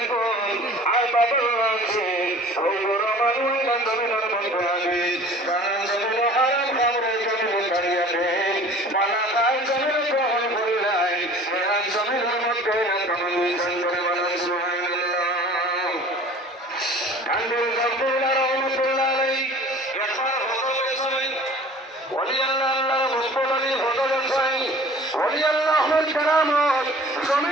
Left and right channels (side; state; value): both; normal; correlation 0.46